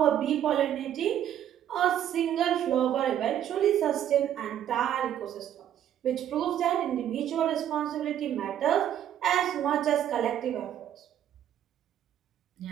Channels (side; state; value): left; quieter; 10.6 dB